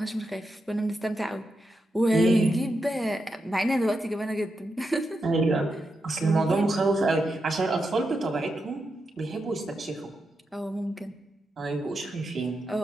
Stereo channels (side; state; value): both; normal; correlation 0.86